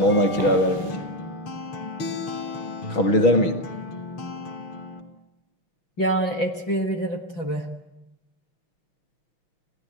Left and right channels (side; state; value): right; late; 6.0 ms